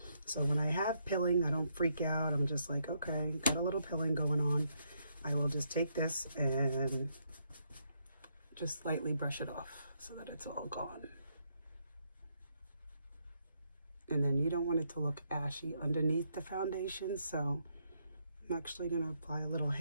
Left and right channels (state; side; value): inverted; both; correlation -0.76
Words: So when I have pilling, I don't freak out. I'm just like, okay, got a little pilling going on. I will just take this and just slightly brush it off so that it's all gone. And then you don't want it to look ashy underneath the foundation, so I'm actually going to apply a little